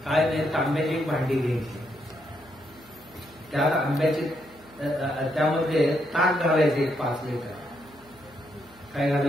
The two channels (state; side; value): noise; left; hum, 28 dB below the sound